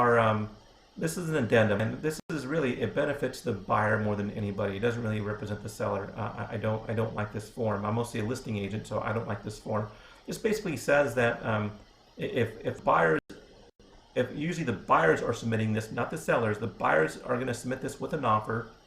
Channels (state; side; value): identical; both; correlation 1.00